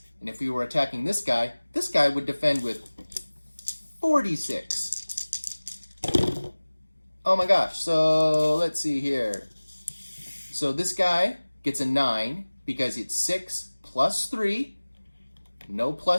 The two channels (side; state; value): both; inverted; correlation -1.00